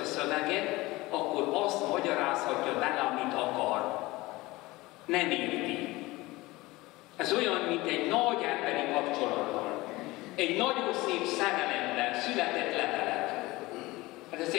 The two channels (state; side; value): quieter; right; 20.4 dB